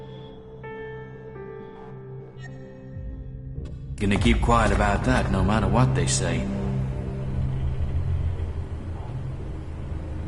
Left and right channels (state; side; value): identical; both; correlation 1.00